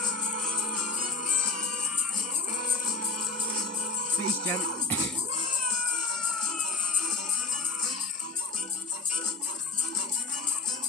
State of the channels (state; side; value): quieter; right; 4.0 dB